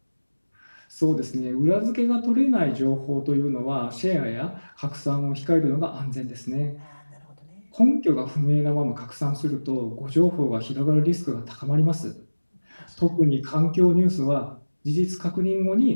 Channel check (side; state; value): both; inverted; correlation -1.00